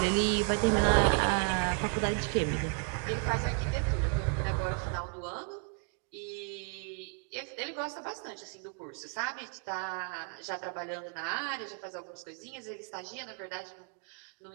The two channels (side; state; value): left; quieter; 39.6 dB